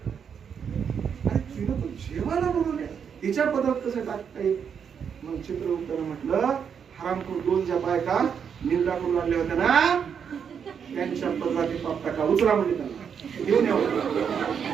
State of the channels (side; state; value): left; quieter; 7.2 dB